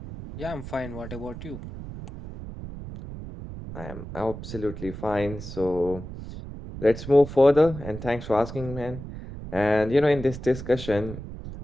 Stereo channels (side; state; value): right; noise; rumble, 11 dB below the sound